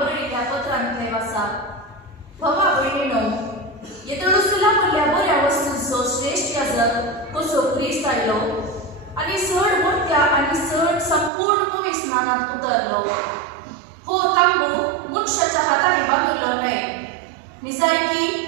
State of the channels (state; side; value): drops out; left; at 11.3 s